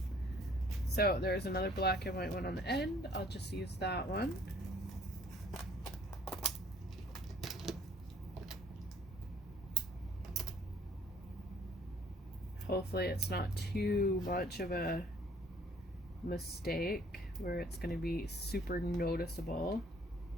So there's another black and white one on the end. I'll just use that one. Hopefully it's not too much of a mistake where it's going to be super noticeable.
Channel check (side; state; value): both; normal; correlation 0.58